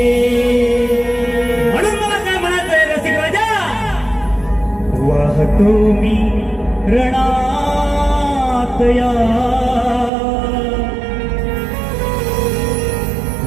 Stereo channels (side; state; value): left; drops out; at 10.1 s